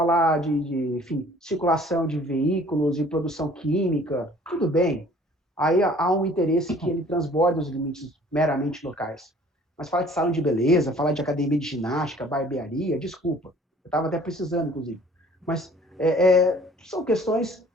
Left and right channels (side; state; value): both; normal; correlation 0.53